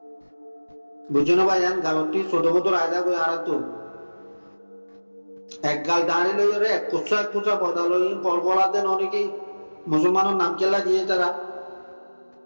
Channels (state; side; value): inverted; both; correlation -1.00